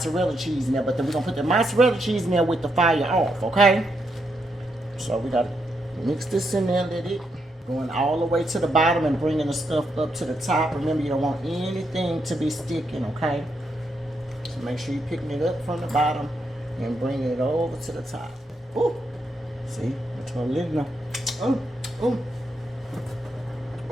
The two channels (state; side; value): normal; both; correlation 0.80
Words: cheese in there, but then we're going to put the mozzarella cheese in there with the fire off, okay? So we got to mix this in there, let it going all the way to the bottom and bringing the stuff up to the top. Remember, you don't want anything to be sticking, okay? So make sure you're picking it up from the bottom and bringing it over to the top. Ooh, see, that's what I'm letting know.